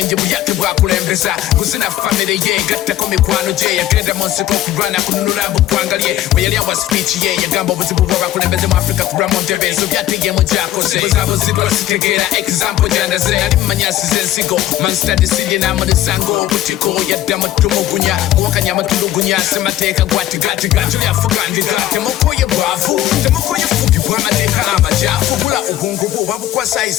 buyake bwa kulembeza kuzina family ye gatta ko mikwano je yagenda monse ko kurana kununura bukwangalye weyali awa speech ye yagamba obuzibu bwa kulembeza mu Africa kuramo ntebezo byatiye mu jakoze buzabo zidwa sitegera example jandaze ali manyasi zensigo man study sili na musango butiko yadda mutumugunya wakanya matulugunya semateka gwati gati gati yafugandika temukoye bwafu temukoye fugi bwamateka amajafu bula ubungu bwo babukwa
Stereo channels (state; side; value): quieter; right; 13.3 dB